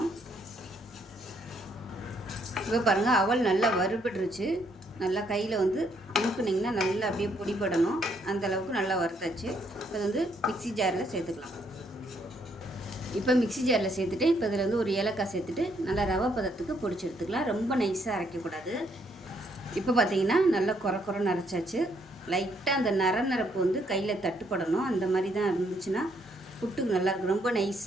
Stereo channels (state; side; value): normal; both; correlation 0.71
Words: இப்போ பாருங்கள், அவல் நல்லா வறுபட்டுருச்சு. நல்லா கையில் அமுக்குனிங்கன்னா நல்லா அப்படியே பொடிப்படணும். அந்தளவுக்கு நல்லா வறுத்தாச்சு. இப்போ மிக்சி ஜாரில் சேர்த்துக்கலாம். இப்போ மிக்சி ஜாரில் சேர்த்துட்டு இப்போ இதில் ஒரு ஏலக்காய் சேர்த்துட்டு நல்லா ரவை பதத்துக்கு பொடிச்சு எடுத்துக்கலாம். ரொம்ப நைஸாக அரைக்கக்கூடாது. இப்போ பார்த்தீங்கன்னா நல்லா குறைன்னு அரைச்சாச்சு. லைட்டாக அந்த நரப்பு கையில் தட்டுப்படணும். அந்த மாதிரி தான் இருந்துச்சுன்னா புட்டுக்கு நல்லாயிருக்கும். ரொம்ப